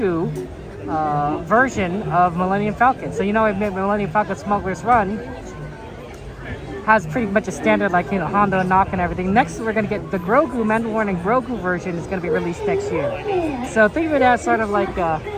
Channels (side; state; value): both; identical; correlation 1.00